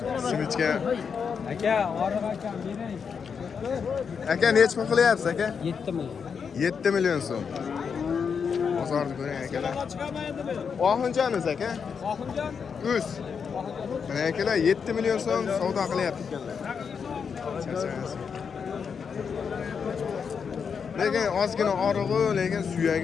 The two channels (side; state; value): right; quieter; 6.3 dB